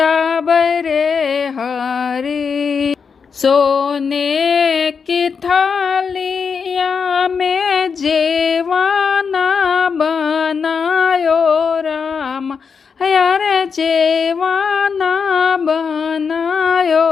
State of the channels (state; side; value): quieter; right; 5.9 dB